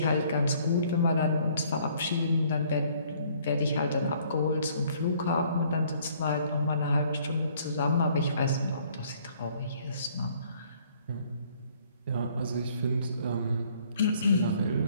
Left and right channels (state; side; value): inverted; both; correlation -0.61